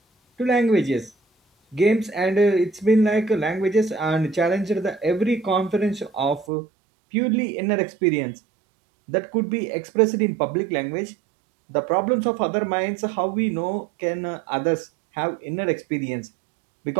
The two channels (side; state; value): left; drops out; at 6.5 s